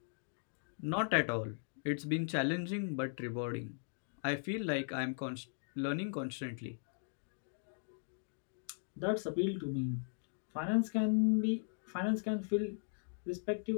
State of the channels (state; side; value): silent; right; digital silence